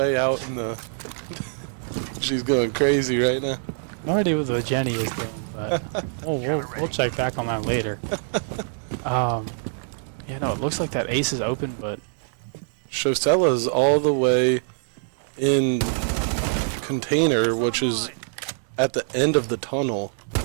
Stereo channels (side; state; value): left; silent; digital silence